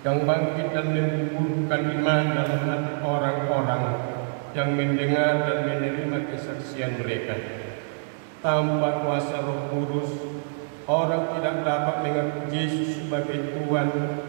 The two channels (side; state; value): left; silent; digital silence